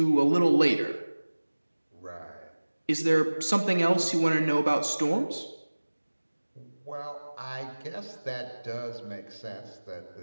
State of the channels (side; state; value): both; inverted; correlation -1.00